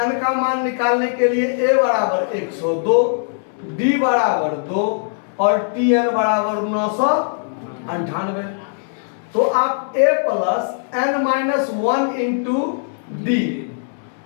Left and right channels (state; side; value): silent; right; digital silence